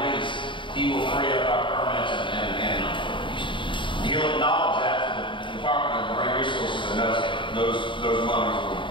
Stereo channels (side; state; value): right; late; 0.24 ms